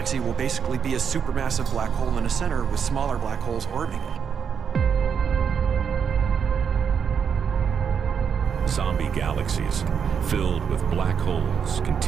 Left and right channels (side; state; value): left; quieter; 7.1 dB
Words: will basically be a supermassive black hole in a center with smaller black holes orbiting it. Zombie galaxies filled with black holes